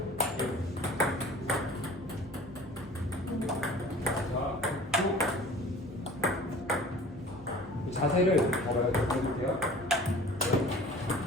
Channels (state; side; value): normal; both; correlation 0.45